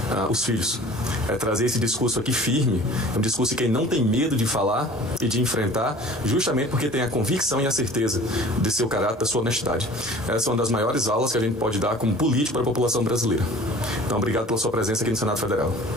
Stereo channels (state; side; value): normal; both; correlation 0.45